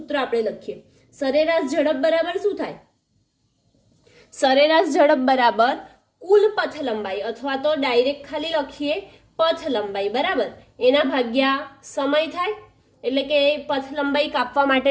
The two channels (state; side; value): identical; both; correlation 1.00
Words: આપણે લખીએ. સરેરાશ ઝડપ બરાબર શું થાય? સરેરાશ ઝડપ બરાબર કુલ પથ લંબાઈ અથવા તો ડાયરેક્ટ ખાલી લખીએ પથ લંબાઈ બરાબર એના ભાગ્યા સમય થાય. એટલે કે પથ લંબાઈ કાપવા માટે